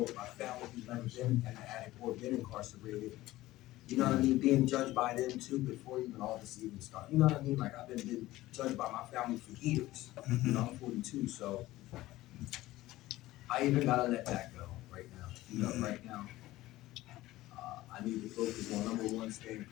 with my family who's never been an addict or been incarcerated. You know what I mean? Being judged by them too before even all this even started. You know what I mean? Like I've been judged by my family for years. You know, I'm 42, so I even gotta let that go right now. You know, right now, I need to focus on number one, staying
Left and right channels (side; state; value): right; quieter; 16.9 dB